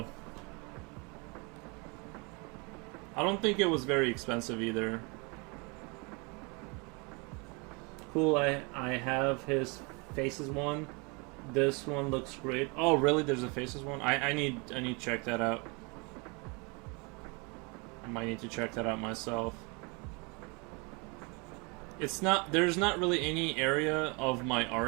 I don't think it was very expensive either. Cool, I have his Faces one. This one looks great. Oh, really? There's a Faces one? I need to check that out. I might need to check that out myself. There's not really any area of my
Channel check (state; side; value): quieter; left; 30.6 dB